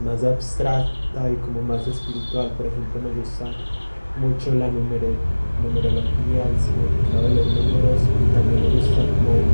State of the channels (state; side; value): inverted; both; correlation -1.00